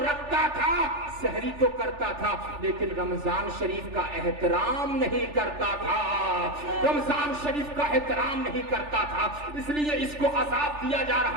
رکھتا تھا، سحری تو کرتا تھا، لیکن رمضان شریف کا احترام نہیں کرتا تھا، رمضان شریف کا احترام نہیں کرتا تھا، اس لیے اس کو عذاب دیا جا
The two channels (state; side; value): late; left; 3.4 ms